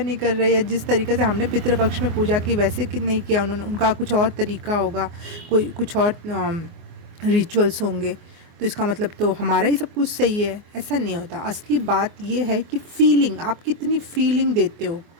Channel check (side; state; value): left; late; 24 ms